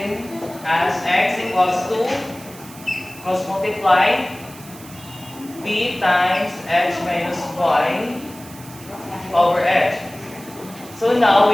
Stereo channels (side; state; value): right; noise; hiss, 19 dB below the sound